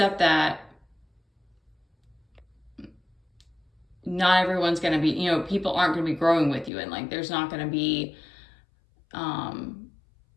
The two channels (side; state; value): right; drops out; at 6.7 s